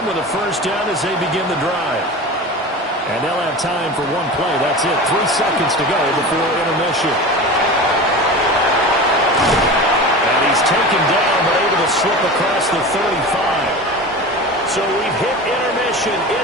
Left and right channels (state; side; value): normal; both; correlation 0.31